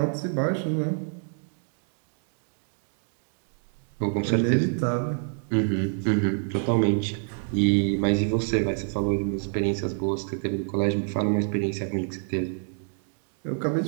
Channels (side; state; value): left; silent; 60 dB below the other